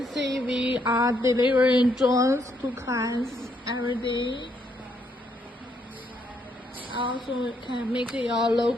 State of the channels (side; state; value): both; normal; correlation 0.74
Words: see we are delivering drones to clients every day. Also can make your